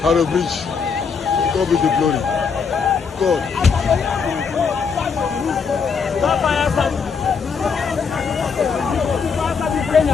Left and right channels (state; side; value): quieter; right; 5.8 dB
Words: Bridge. God be the glory. God.